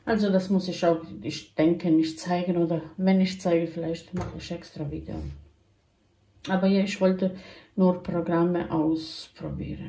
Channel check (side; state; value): both; identical; correlation 1.00